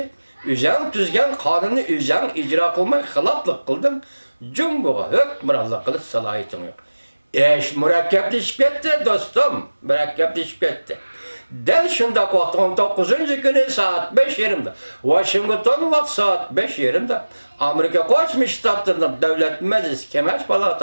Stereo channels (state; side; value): inverted; both; correlation -1.00